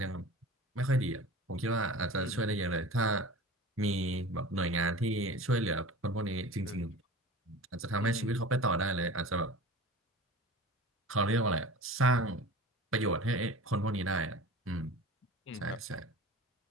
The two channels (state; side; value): normal; both; correlation 0.36